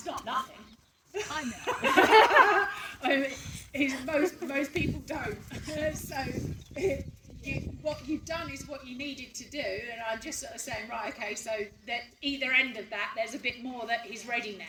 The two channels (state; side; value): identical; both; correlation 1.00